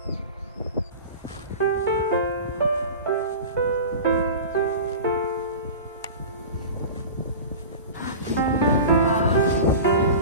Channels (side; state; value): both; inverted; correlation -0.33